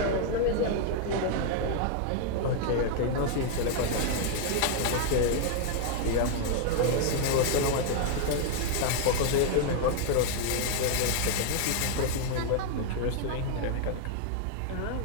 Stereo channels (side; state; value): both; different; correlation 0.00